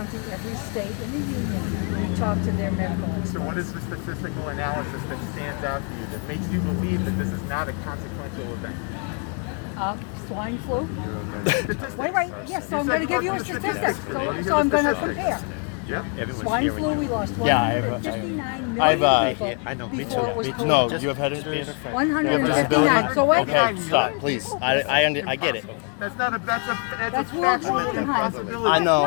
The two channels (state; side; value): quieter; right; 38.8 dB